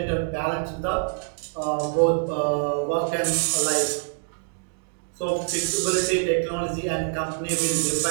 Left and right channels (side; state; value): left; silent; digital silence